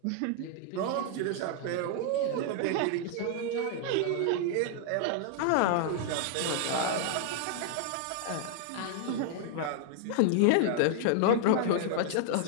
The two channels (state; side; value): different; both; correlation 0.00